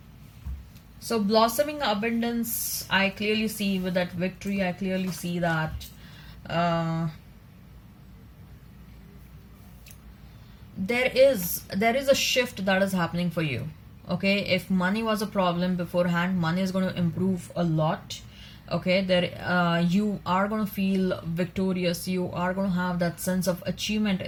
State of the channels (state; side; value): identical; both; correlation 1.00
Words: So blossoming abundance, I clearly see with that victory. I clearly see that uh, there is a shift that is happening for you. Okay, if money was a problem beforehand, money is going to improve a lot. Okay, there you are going to feel victorious. You are going to have that sense of achievement